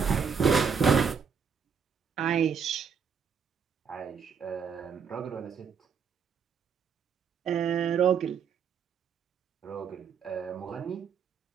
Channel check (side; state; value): left; quieter; 6.5 dB